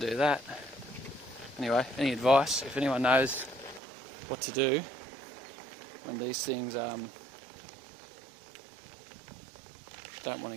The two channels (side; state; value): left; drops out; at 3.8 s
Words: that. Anyway, any advice, if anyone knows what to do when these things don't want